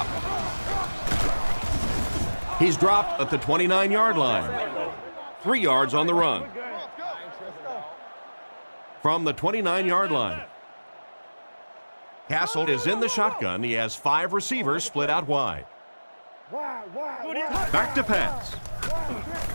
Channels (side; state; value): both; inverted; correlation -1.00